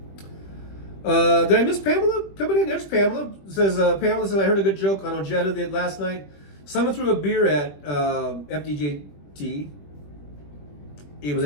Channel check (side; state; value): right; late; 21 ms